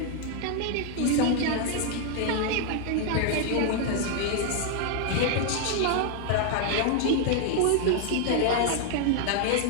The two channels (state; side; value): different; both; correlation 0.00